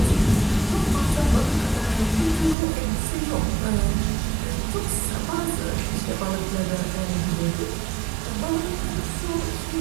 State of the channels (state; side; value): drops out; left; at 2.6 s